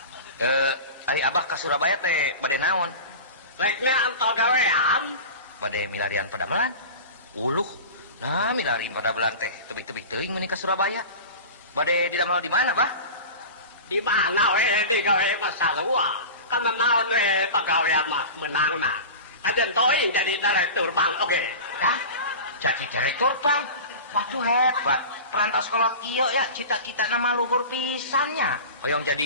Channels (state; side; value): inverted; both; correlation -0.33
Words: Ari Abah ka Surabaya teh bade naon? Reknya antau gawean. Bade milarian padamelan. Uluh. Nah, milarian padamelan teh tebih-tebih teuing meuni ka Surabaya. Bade didamel di mana, Bah? Di mana we di gawe masalua. Kan naon we pagawean mah menangna. Ajen teuing jadi direktur bank oge. Dah, jadi direktur bang. Waduh hebat. Perantas kolot iyo ya cita-cita nama luhur pisannya. Hoyong